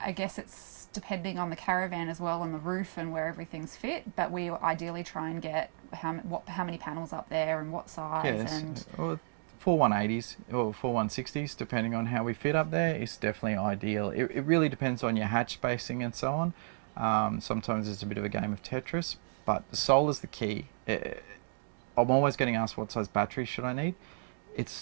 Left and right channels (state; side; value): silent; left; digital silence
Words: guess it's depending on the caravan as well, on the roof and where everything's fit, but we ideally try and get how many panels up there and what size. Yes. And well, 4 180s or 4 160s, depending on how we fit up there, is definitely ideal. It really depends on your hatch spacing and so on. Sometimes it's a bit of a game of Tetris, but solar's the key. I'm always getting asked what size battery should I need.